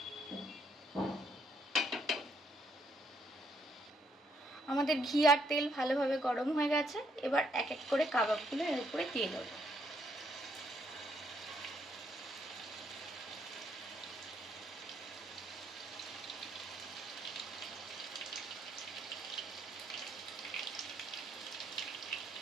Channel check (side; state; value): both; normal; correlation 0.72